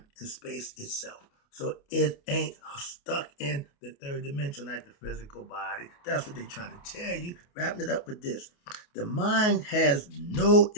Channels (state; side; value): late; right; 28 ms